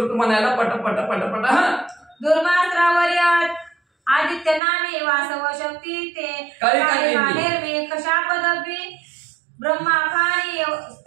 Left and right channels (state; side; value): drops out; left; at 4.6 s